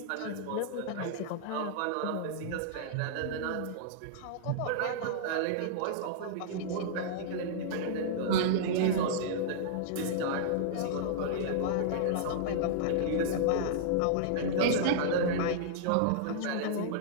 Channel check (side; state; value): both; different; correlation -0.02